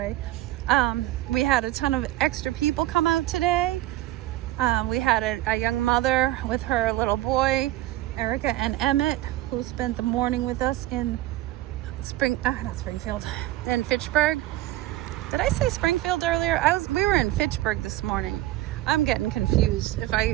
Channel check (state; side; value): quieter; left; 15.9 dB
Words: We had a ton of extra people come out today. We had a young mother with her little boy, Erica and Emmett, who spent the morning with us in in Fitchburg. Did I say Springfield earlier? We were in Fitchburg this morning. I'm getting confused if